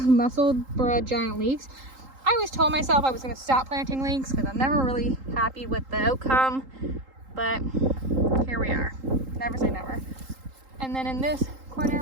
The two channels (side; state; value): left; late; 3.8 ms